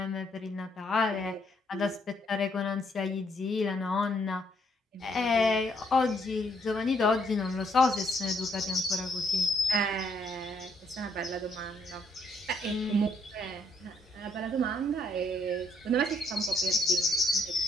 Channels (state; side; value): normal; both; correlation 0.71